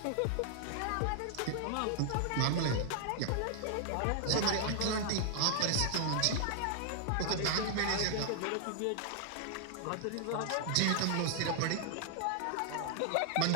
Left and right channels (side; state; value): both; different; correlation 0.00